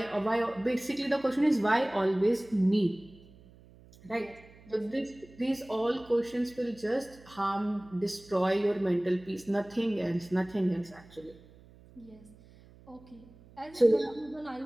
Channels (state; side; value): noise; right; hum, 24 dB below the sound